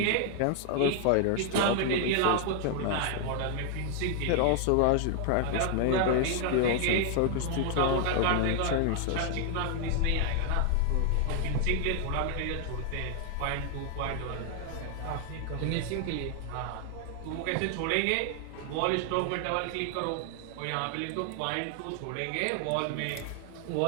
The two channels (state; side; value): different; both; correlation 0.00